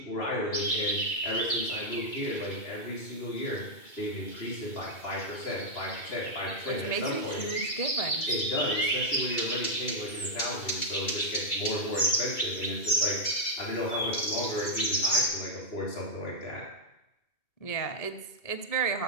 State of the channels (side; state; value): right; late; 2.3 ms